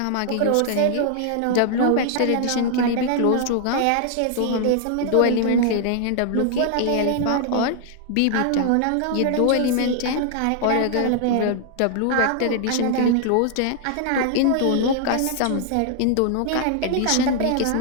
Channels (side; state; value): both; different; correlation 0.00